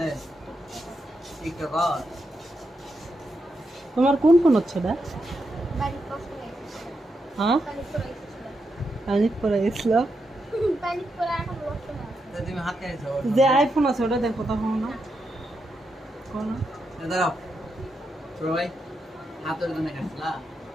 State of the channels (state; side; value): normal; both; correlation 0.84